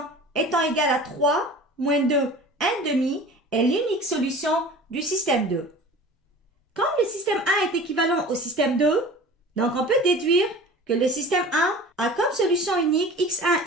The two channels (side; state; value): both; normal; correlation 0.40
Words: étant égal à 3, moins 2, 1 demi est l'unique solution du système 2. Comme le système 1 est équivalent au système 2, donc on peut déduire que le système 1 a comme solution unique x1,